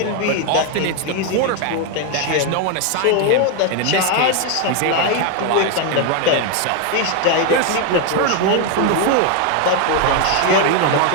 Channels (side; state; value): both; different; correlation 0.01